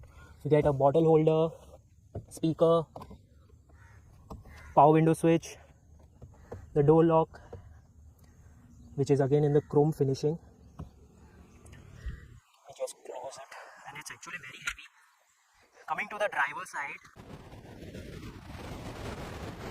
You get a bottle holder, speaker, power window switch, the door lock, which is again in the chrome finishing. I just close it, and it's actually very heavy. Coming to the driver's side,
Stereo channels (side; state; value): both; identical; correlation 1.00